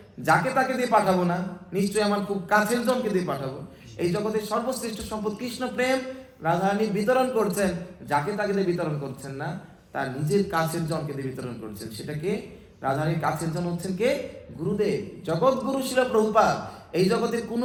যাকে তাকে দিয়ে পাঠাবো না, নিশ্চয়ই আমার খুব কাছের জনকে দিয়ে পাঠাবো। এই জগতের সর্বশ্রেষ্ঠ সম্পদ কৃষ্ণ প্রেম রাধারানী বিতরণ করছেন, যাকে তাকে দিয়ে বিতরণ করছেন না, তার নিজের কাছের জনকে দিয়ে বিতরণ করছেন। সেটাকে রাধারানীর কাছের জন হচ্ছেন কে? গুরুদেব, জগৎ গুরু শিল প্রভুপাদ। এই জগতের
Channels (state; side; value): identical; both; correlation 1.00